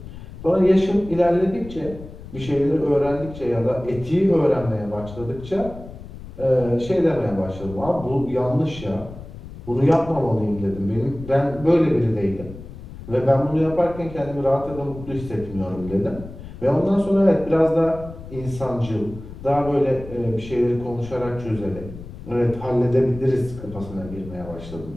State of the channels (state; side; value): noise; left; rumble, 14 dB below the sound